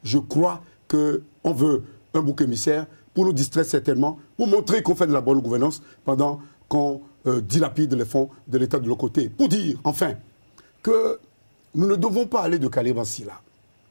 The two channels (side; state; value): both; inverted; correlation -1.00